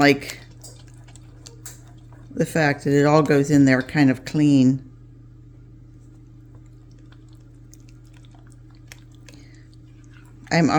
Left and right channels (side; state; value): both; identical; correlation 1.00